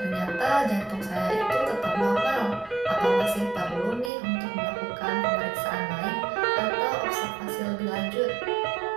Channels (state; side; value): drops out; left; at 4.1 s